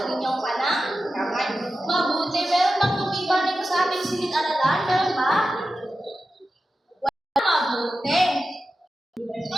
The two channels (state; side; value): normal; both; correlation 0.92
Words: inyong kamay. Mabuti, meron bang tumiba nito sa ating silid-aralan? Meron ba? Wala. Mabuti.